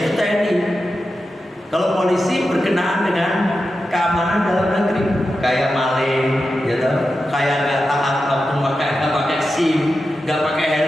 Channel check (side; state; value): both; normal; correlation 0.90